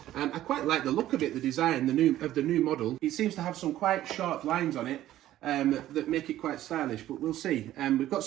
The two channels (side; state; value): left; quieter; 13.5 dB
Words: I quite like the look of it, the design, the new model. It seems to have some quite sharp lines on it that make it quite stylish, but we'll see. We've got